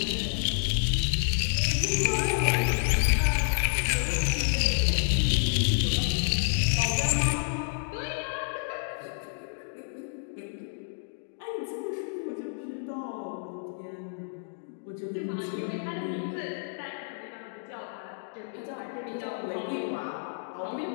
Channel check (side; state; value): right; silent; digital silence